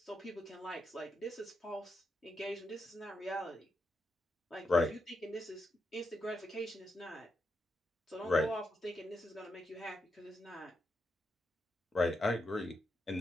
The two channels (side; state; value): both; normal; correlation 0.83